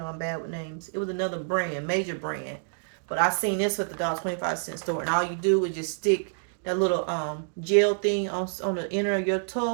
I'm bad with names. It was another brand, major brand, but I seen this with the $1.25 store, and all you do is just stick that little gel thing on the inner of your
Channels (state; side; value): silent; left; 60 dB below the other